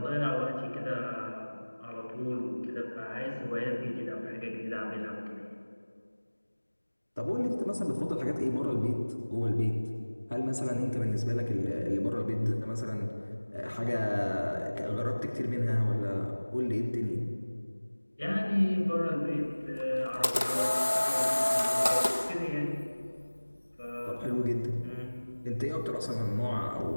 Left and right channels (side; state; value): both; inverted; correlation -1.00